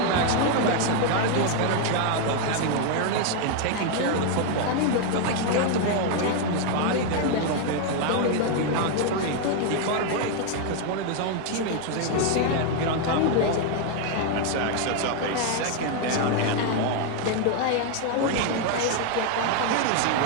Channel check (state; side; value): different; both; correlation 0.01